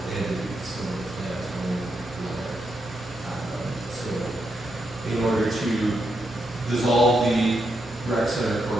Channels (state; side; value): normal; both; correlation 0.82